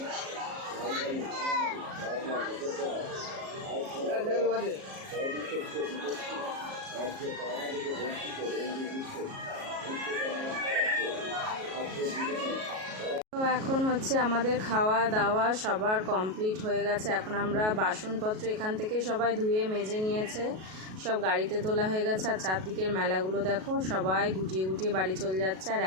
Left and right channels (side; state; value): left; late; 37 ms